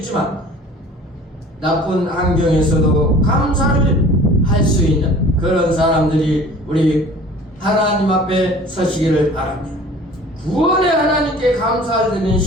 나쁜 환경에서도 감사를 할 수 있는 그런 사람들이 우리 하나님 앞에 서시기를 바랍니다. 구원의 하나님께 감사를 드리는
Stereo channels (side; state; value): both; normal; correlation 0.46